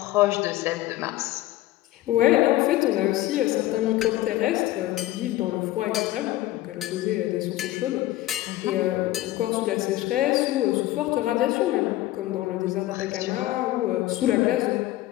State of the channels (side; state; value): right; quieter; 15.9 dB